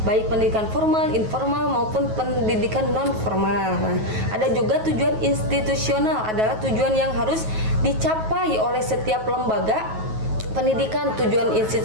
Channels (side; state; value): left; late; 9.3 ms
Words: baik pendidikan formal, informal, maupun pendidikan non-formal. Nah, ada juga tujuan institusional, adalah tujuan yang harus dicapai oleh setiap lembaga pendidikan. Tujuan